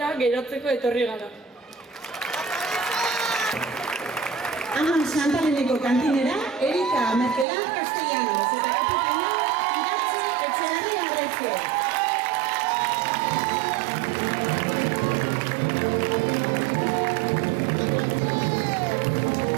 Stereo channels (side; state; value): left; drops out; at 7.5 s